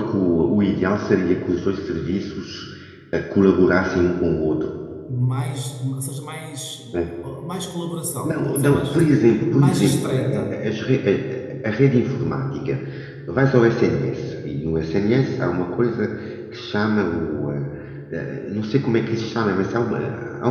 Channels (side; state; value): both; identical; correlation 1.00